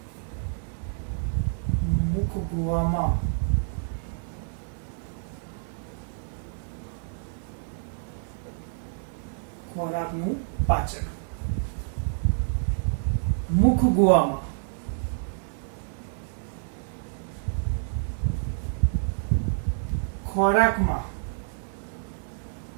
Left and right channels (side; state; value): left; silent; 59 dB below the other